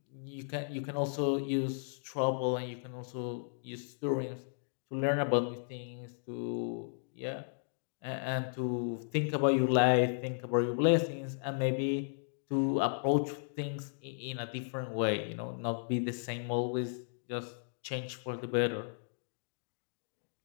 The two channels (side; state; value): right; silent; digital silence